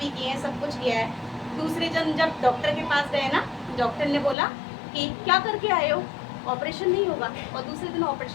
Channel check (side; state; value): right; drops out; at 4.4 s